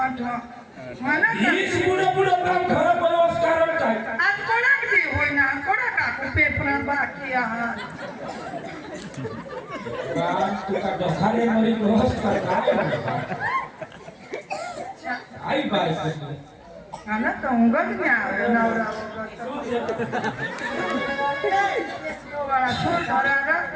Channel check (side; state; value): both; identical; correlation 1.00